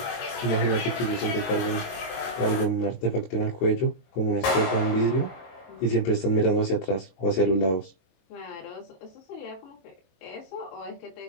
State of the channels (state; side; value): late; right; 22 ms